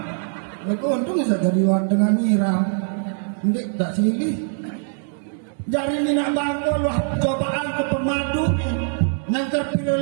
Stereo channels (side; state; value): left; silent; 56 dB below the other